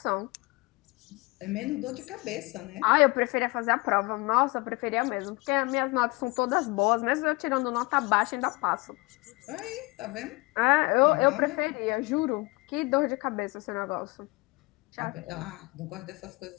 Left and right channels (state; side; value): quieter; right; 24.8 dB